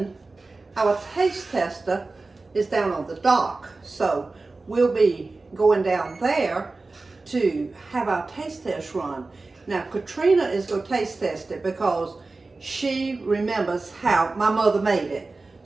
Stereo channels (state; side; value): quieter; left; 3.5 dB